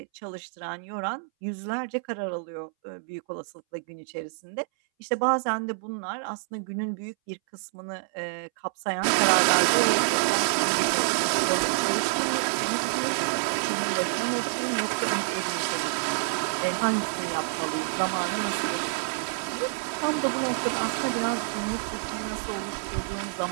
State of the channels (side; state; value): left; silent; 60 dB below the other